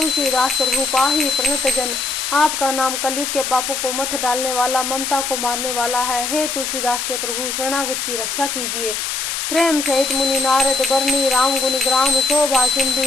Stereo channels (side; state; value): left; noise; hiss, 2 dB below the sound